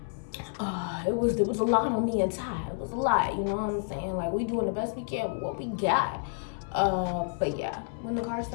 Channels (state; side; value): silent; right; 58 dB below the other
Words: it was a lot on me and Ty. It was a lot, you know what I'm saying? Like, we doing the best we can with what we got. But yeah, when the car